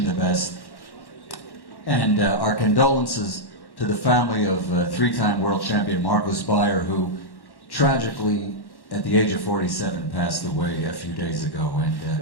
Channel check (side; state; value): right; late; 1.1 ms